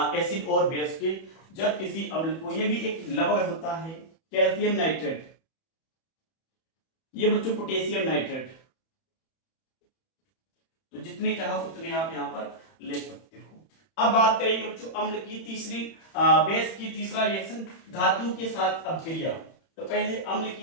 एसिड और बेस के, जब किसी अम्ल को, ये भी एक लवण होता है कैल्शियम नाइट्रेट, ये बच्चों पोटेशियम नाइट्रेट, तो जितने चाहो उतने आप यहाँ पर ले सकते हो। अब बात करेंगे बच्चों अम्ल की तीसरी बेस की तीसरा रिएक्शन धातु के साथ अपक्रिया। तो पहले अम्ल की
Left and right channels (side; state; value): right; late; 31 ms